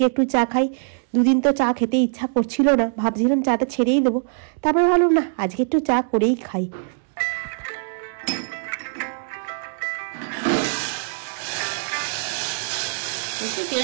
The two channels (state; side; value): silent; left; digital silence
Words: একটু চা খাই। দুদিন তো চা খেতে ইচ্ছা করছিল না, ভাবছিলাম চাটা ছেড়েই দেবো। তারপরে ভাবলাম না, আজকে একটু চা করেই খাই।